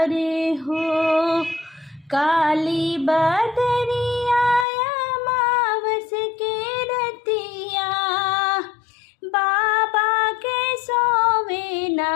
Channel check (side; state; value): right; drops out; at 4.7 s